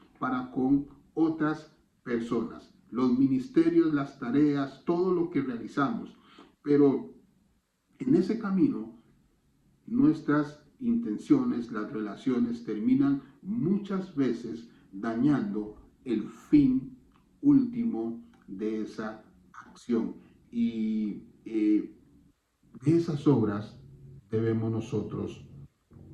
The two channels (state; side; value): identical; both; correlation 1.00